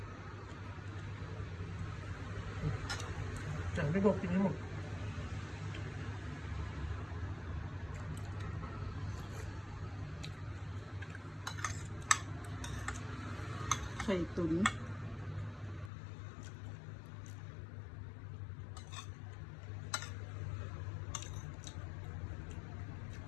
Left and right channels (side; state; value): right; drops out; at 15.9 s